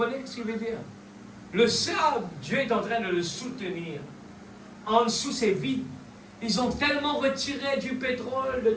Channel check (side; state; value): both; identical; correlation 1.00